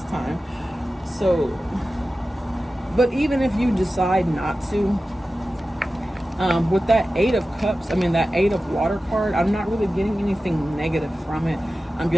time. So, but even if you decide not to, with that 8 of cups, that 8 of water card, I'm not really getting anything negative from it. I'm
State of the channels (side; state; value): both; normal; correlation 0.94